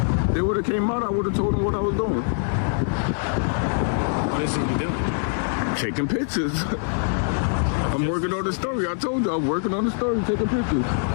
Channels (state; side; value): silent; right; digital silence